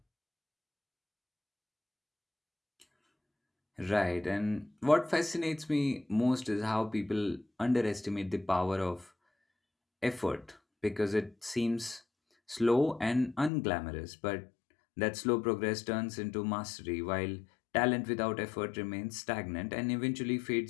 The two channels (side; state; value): right; drops out; at 13.5 s